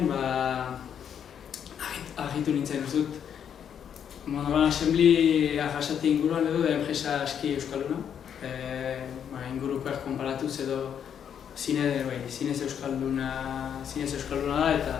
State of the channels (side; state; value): right; quieter; 8.5 dB